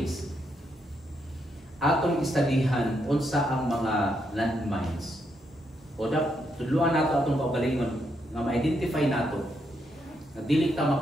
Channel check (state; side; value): normal; both; correlation 0.79